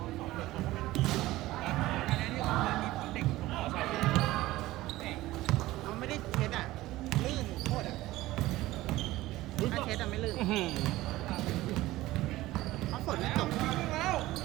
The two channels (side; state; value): left; quieter; 17.3 dB